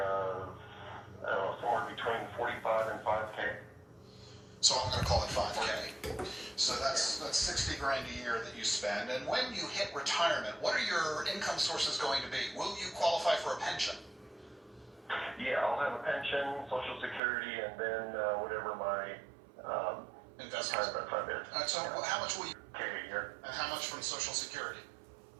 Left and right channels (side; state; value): left; drops out; at 17.2 s